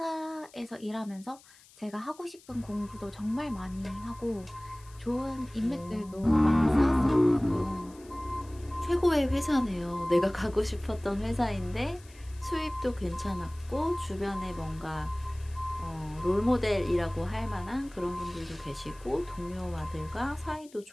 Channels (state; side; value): noise; left; hiss, 25 dB below the sound